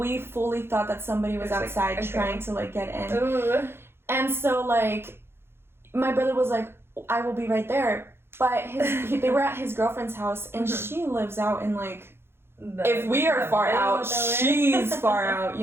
fully thought that somebody was outside trying to, like, get in. Ooh. And so, like, my brother was like, I will be right there. But they were at his girlfriend's house, and she lives out in, like, if we are far out, she's far out,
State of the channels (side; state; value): left; late; 0.11 ms